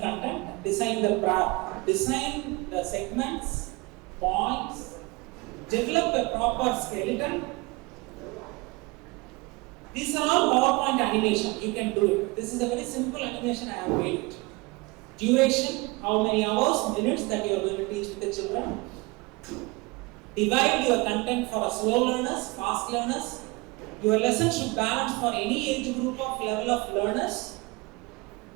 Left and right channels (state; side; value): quieter; left; 24.8 dB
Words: Design the segments, points. Develop a proper skeleton. These are all PowerPoint animation. You can do it. This is a very simple animation I have made it. Duration, how many hours, minutes that you are going to teach with the children. Divide your content for slow learners, fast learners. Your lesson should balance for any age group of level of learners.